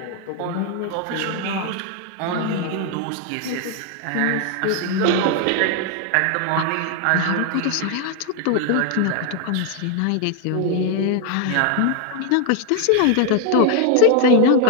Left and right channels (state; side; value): different; both; correlation 0.01